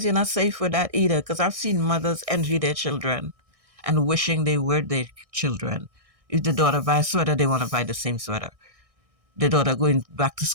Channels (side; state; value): left; late; 1.6 ms